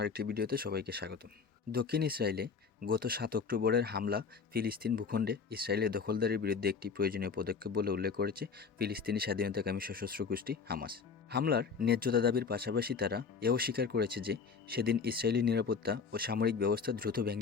আরেকটি ভিডিওতে সবাইকে স্বাগতম। দক্ষিণ ইসরায়েলে গত ৭ অক্টোবরের হামলা ফিলিস্তিন ভূখণ্ডে ইসরায়েলের দখলদারির বিরুদ্ধে একটি প্রয়োজনীয় পদক্ষেপ বলে উল্লেখ করেছে ফিলিস্তিনি স্বাধীনতাকামী সশস্ত্র গোষ্ঠী হামাস। হামলার ন্যায্যতা দাবির পাশাপাশি তারা এও স্বীকার করেছে যে সেদিন ইসরায়েলি নিরাপত্তা ও সামরিক ব্যবস্থা দ্রুত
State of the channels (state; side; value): quieter; right; 5.6 dB